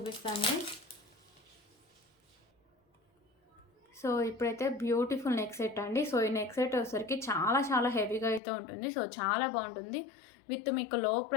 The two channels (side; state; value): right; drops out; at 8.4 s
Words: సో ఇప్పుడైతే బ్యూటిఫుల్ నెక్ సెట్ అండి. సో ఈ నెక్ సెట్ వచ్చేసరికి చాలా హెవీగా అయితే ఉంటుంది. సో చాలా బాగుంటుంది. విత్ మీకు లో